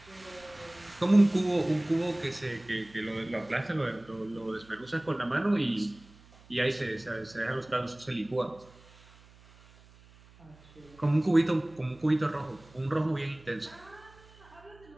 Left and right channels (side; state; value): right; noise; hum, 25 dB below the sound